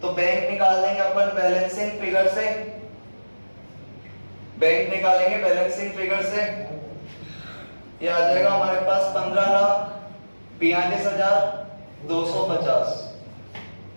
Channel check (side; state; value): both; inverted; correlation -1.00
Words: तो बैंक निकाल देंगे अपन बैलेंसिंग फिगर से, बैंक निकालेंगे बैलेंसिंग फिगर से, ये आ जाएगा हमारे पास 15,42,250